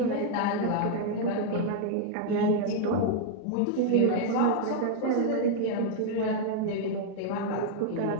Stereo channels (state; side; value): different; both; correlation 0.00